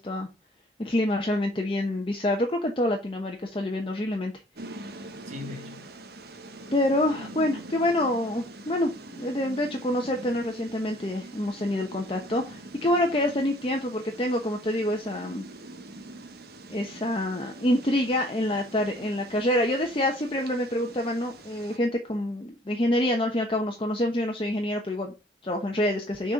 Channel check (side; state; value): both; normal; correlation 0.57